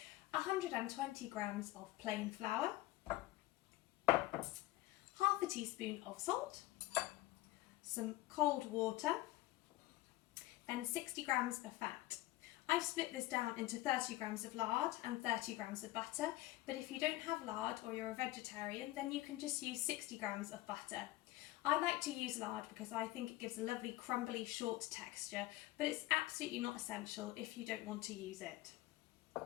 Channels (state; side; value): quieter; right; 17.5 dB